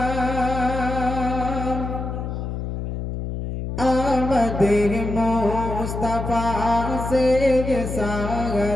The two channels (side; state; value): left; noise; hum, 5 dB below the sound